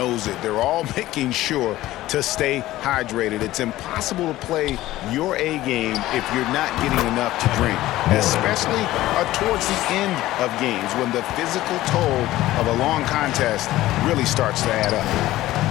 it. They're all making sure to stay hydrated. It's impossible to play your A game if you're not getting enough to drink, especially towards the end of games when the physical toll of a long contest really starts to add up.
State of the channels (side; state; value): right; quieter; 15.9 dB